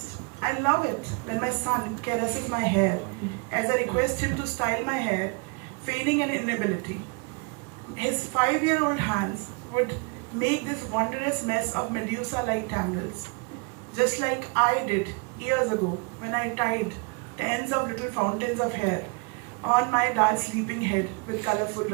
I love it when my son caresses my hair as I request him to style my hair, feigning an inability. His 5-year-old hands would make this wondrous mess of Medusa-like tangles, just like I did years ago when I tied the ends of little fountains of hair on my dad's sleeping head with colorful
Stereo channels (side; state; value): left; quieter; 31.4 dB